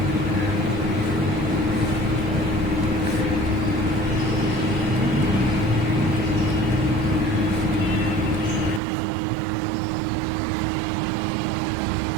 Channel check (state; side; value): drops out; left; at 8.8 s